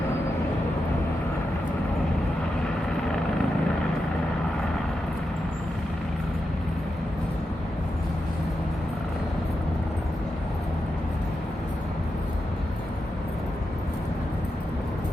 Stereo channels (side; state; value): both; normal; correlation 0.88